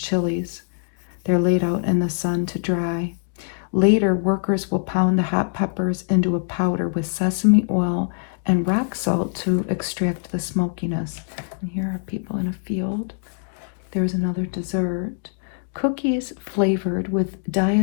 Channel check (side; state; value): right; silent; digital silence